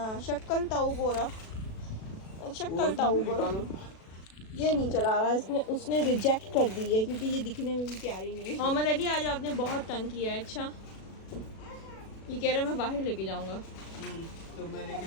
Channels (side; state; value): right; late; 37 ms